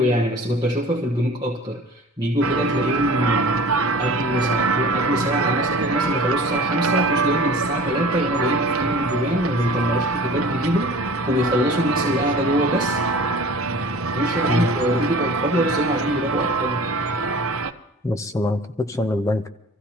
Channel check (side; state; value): both; normal; correlation 0.43